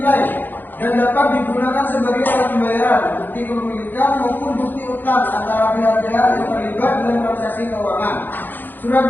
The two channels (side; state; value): right; late; 0.090 ms